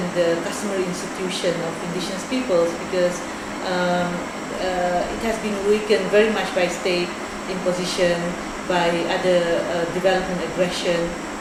the customary institution of Indigenous peoples, because it has been weakened very much by state imposition, by other development aggression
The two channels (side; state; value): both; identical; correlation 1.00